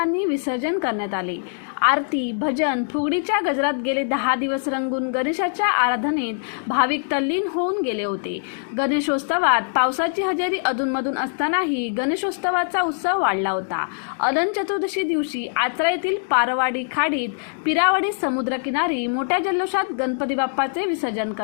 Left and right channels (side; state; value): right; silent; digital silence